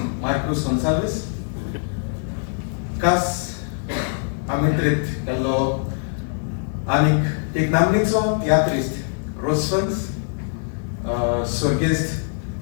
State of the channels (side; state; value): right; silent; 64 dB below the other